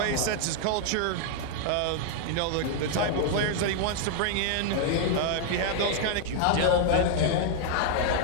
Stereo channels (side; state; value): both; different; correlation 0.00